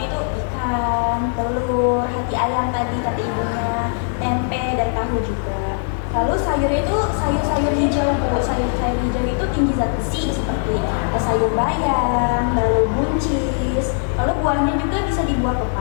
itu ikan, telur, hati ayam tadi kata ibunya, tempe dan tahu juga. Lalu sayurnya itu sayur-sayur hijau Bu. Sayur-sayur hijau itu tinggi zat besi seperti sayur bayam, lalu buncis. Lalu buahnya juga bisa di buah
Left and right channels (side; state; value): right; silent; 65 dB below the other